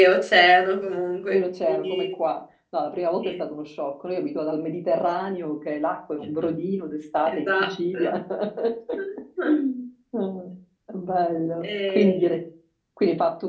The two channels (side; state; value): both; identical; correlation 1.00